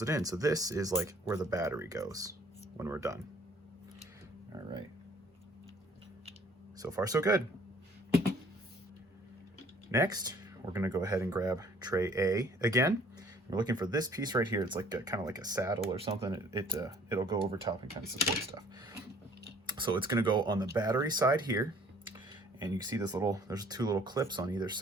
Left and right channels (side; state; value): both; normal; correlation 0.56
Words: it in. So this is like where the battery goes when we're done. All right. So far, so good. Next, we're gonna go ahead and grab tray A again. We're looking for this piece right here. It's like kind of like a saddle or something. It'll go over top and kind of support stuff. So it's gonna go on the battery side here. And you can see there's 2 little clips on either